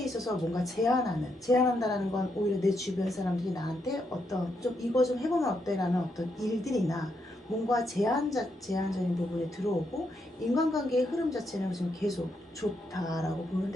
있어서 뭔가 제안한다라는 건 오히려 내 주변 사람들이 나한테 어떤 좀 이거 좀 해보면 어때라는 어떤 일들이나 뭔가 제한적인 부분이 들어오고 인간관계의 흐름 자체는 지금 계속 좋다라고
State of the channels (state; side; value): normal; both; correlation 0.79